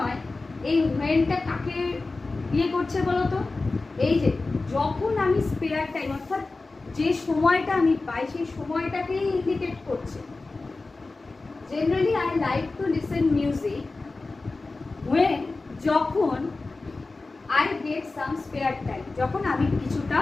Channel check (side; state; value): right; quieter; 3.5 dB